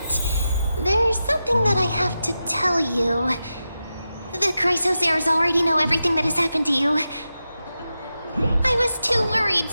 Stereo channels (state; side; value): inverted; both; correlation -0.90